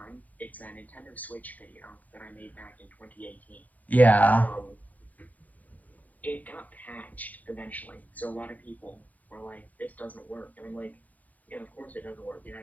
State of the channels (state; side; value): late; right; 0.079 ms